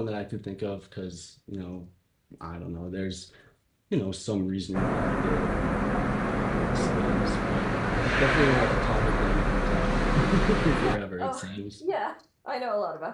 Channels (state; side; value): identical; both; correlation 1.00